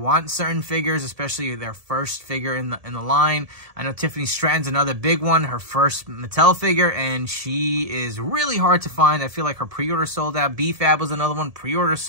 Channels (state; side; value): late; left; 1.7 ms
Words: certain figures, especially their first figure in the line, I know Tiffany Stratton's another big one, her first Mattel figure, and she is really hard to find. I feel like her pre-order sold out. B-Fab was another one, pre-order